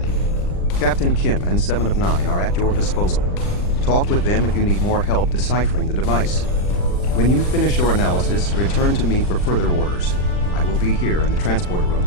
Captain Kim and 7 of 9 are at your disposal. Talk with them if you need more help deciphering the device. When you finish your analysis, return to me for further orders. I will be here in the transporter room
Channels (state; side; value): late; right; 39 ms